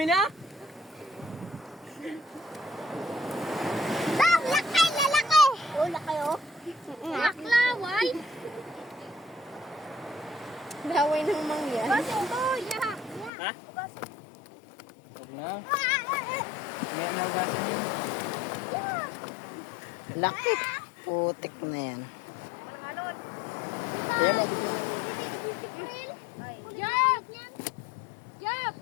na? Bang! Laki! Lalaki! Oh, laki oh! Naklaway. Laway ng mangyan. Uy, lahat. Ha? Huwag na. May nagasan yun. Laki. Putik na yan. Ayan, Jab! Jab!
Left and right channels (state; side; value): drops out; right; at 13.3 s